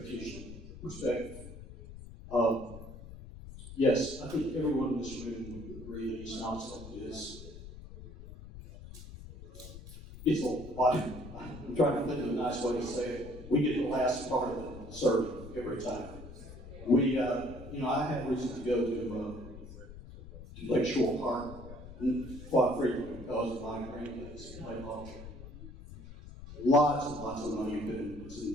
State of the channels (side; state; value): left; noise; rumble, 14 dB below the sound